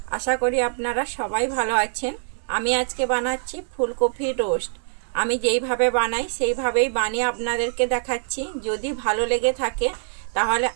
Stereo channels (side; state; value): left; silent; digital silence